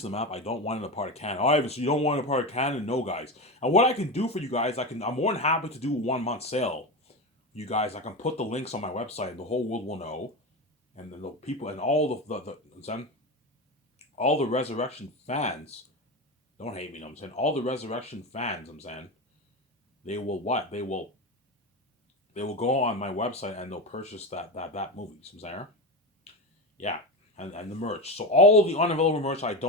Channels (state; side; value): normal; both; correlation 0.20